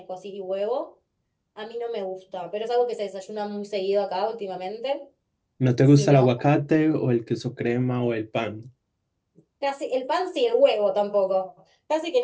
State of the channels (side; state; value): both; identical; correlation 1.00